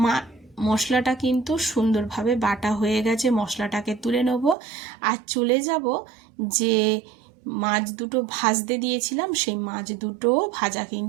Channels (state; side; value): drops out; left; at 4.5 s